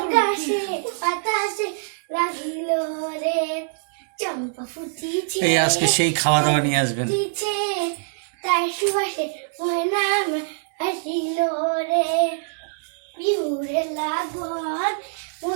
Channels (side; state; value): left; silent; digital silence